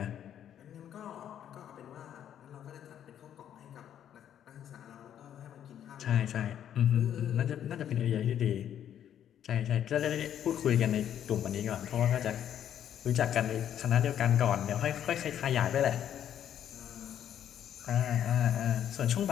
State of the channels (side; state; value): right; quieter; 10.0 dB